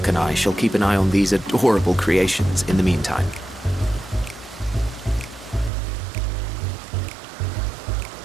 and I shall keep an eye on these adorable creations in the meantime.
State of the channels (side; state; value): left; drops out; at 5.7 s